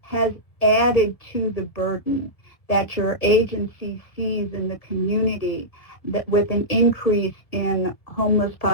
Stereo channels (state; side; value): late; right; 1.7 ms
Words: has added to the burden that your agency sees in the community, that with an increase in